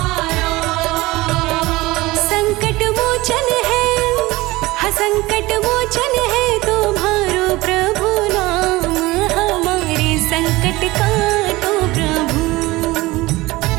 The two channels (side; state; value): left; quieter; 20.1 dB